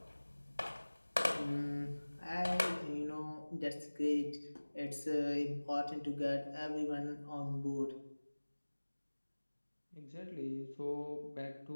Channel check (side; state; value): both; inverted; correlation -1.00